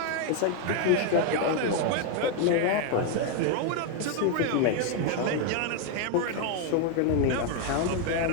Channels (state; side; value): different; both; correlation 0.01